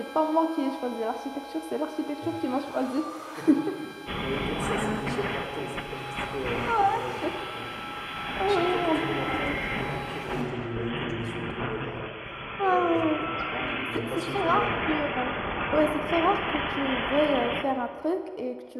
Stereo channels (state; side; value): identical; both; correlation 1.00